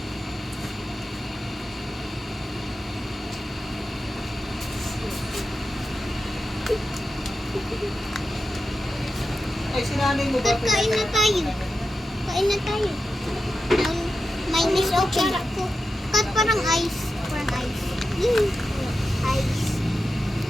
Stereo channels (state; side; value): normal; both; correlation 0.91